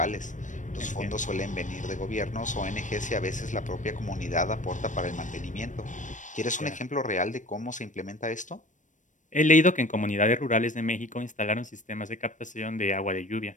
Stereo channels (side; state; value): right; late; 0.37 ms